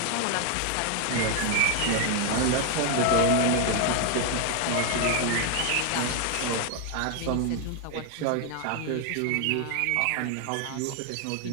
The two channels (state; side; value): different; both; correlation 0.00